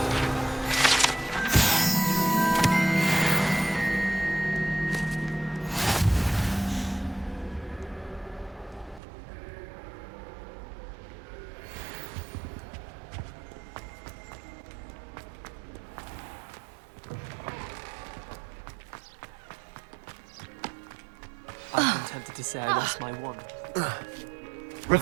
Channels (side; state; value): left; drops out; at 9.0 s